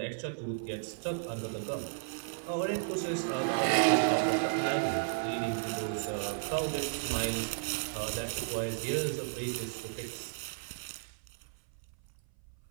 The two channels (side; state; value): left; silent; 55 dB below the other